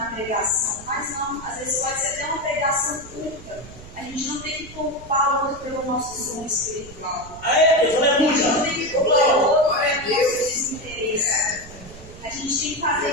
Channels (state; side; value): noise; right; rumble, 17 dB below the sound